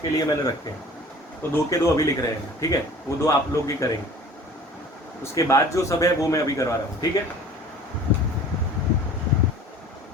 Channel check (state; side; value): normal; both; correlation 0.45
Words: लिए मैंने रखे हैं, तो 2 के 2 अभी लिख रहे हैं, ठीक है। वो 2 आप लोग ही करेंगे, उसके बाद जो सब है वो मैं अभी करवा रहा हूँ, ठीक है।